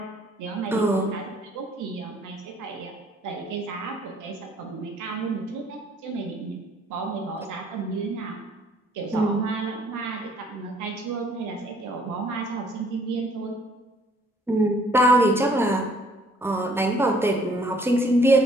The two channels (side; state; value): both; normal; correlation 0.61